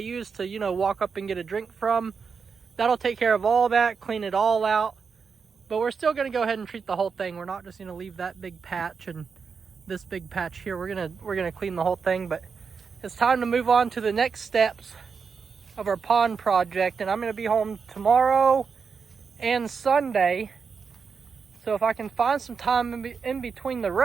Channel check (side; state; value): left; quieter; 5.6 dB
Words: to, you know, walk up and get a drink from. That'll take care of all that, clean it all out. But we're still gonna go ahead and treat the whole thing. We're not just gonna leave that big patch and this big patch here. We're gonna clean the whole thing. But it's time to move on to the next steps of our pond project, and I'm gonna be home tomorrow and Sunday. So if I can find some time in between the